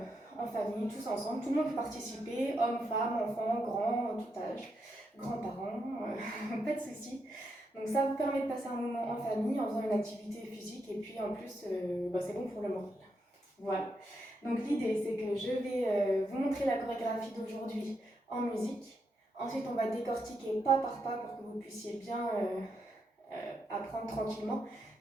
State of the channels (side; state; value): both; normal; correlation 0.81